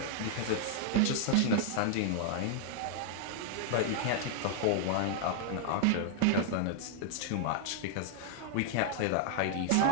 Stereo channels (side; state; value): both; different; correlation 0.00